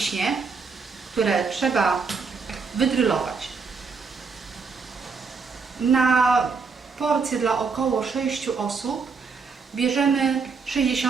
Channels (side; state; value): left; quieter; 5.0 dB